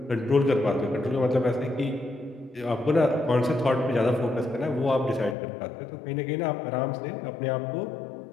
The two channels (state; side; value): drops out; right; at 5.4 s